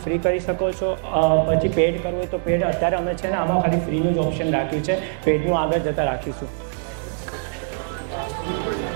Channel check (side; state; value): left; silent; digital silence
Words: ફ્રી કરી શકો છો. પછી પેડ કરવું હોય તો પેડ. અત્યારે અમે છે ને આમાં ખાલી ફ્રીનું જ ઓપ્શન રાખ્યું છે. પેડનું આગળ જતાં રાખીશું.